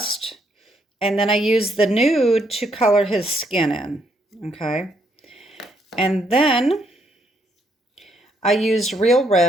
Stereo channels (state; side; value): normal; both; correlation 0.73